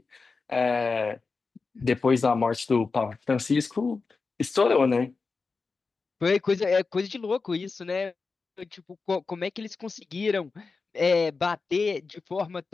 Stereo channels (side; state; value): right; quieter; 4.4 dB